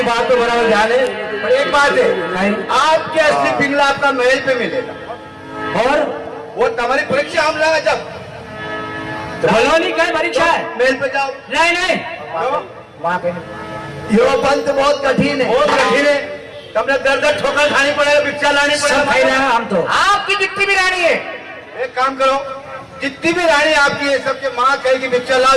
बात तो बराबर ध्यान है, पर एक बात है, आपके असली पिंगला आपका महल पे मिलेगा और वो तुम्हारी परीक्षा हम लगा जब बलौनी का परीक्षा है। महल पे जाओ। नहीं नहीं वहां पे यो पंथ बहुत कठिन है, बहुत कठिन है। तुमने दर दर ठोकर खानी पड़ेगा, भिक्षा लानी सब भाई पड़ेगा। हम तो आपकी जितनी भी रानी है, एक काम करो, जितनी भी रानी आपकी है सबके माँ कहेगी भिक्षा लाओ,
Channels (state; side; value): identical; both; correlation 1.00